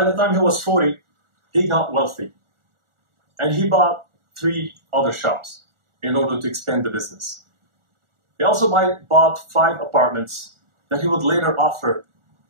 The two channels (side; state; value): left; late; 1.4 ms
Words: the time he was 40, he got wealthy. And he bought 3 other shops in order to expand the business. He also bought 5 apartments that he would later offer